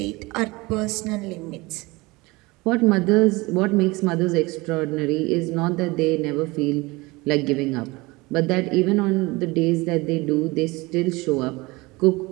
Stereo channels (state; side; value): quieter; left; 23.1 dB